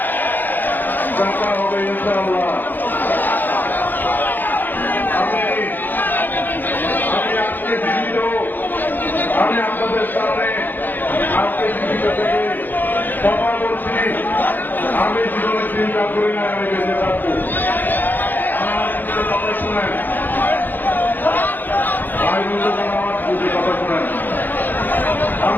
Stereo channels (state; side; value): late; right; 0.089 ms